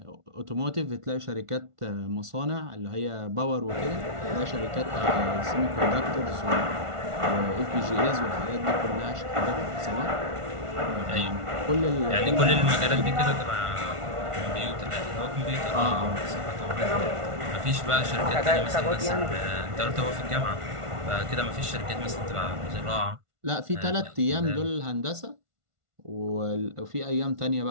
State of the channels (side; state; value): left; late; 1.5 ms